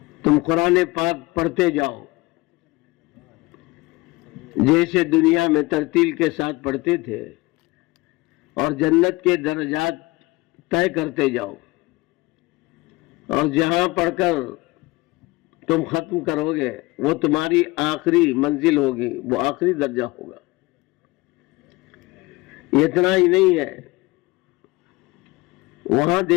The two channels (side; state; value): right; quieter; 22.0 dB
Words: تم قرآن پاک پڑھتے جاؤ جیسے دنیا میں ترتیل کے ساتھ پڑھتے تھے، اور جنت کے درجات طے کرتے جاؤ، اور جہاں پڑھ کر تم ختم کرو گے وہ تمہاری آخری منزل ہوگی، وہ آخری درجہ ہوگا۔ اتنا ہی نہیں ہے، وہاں